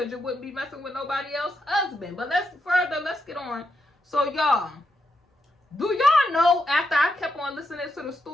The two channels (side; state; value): both; normal; correlation 0.83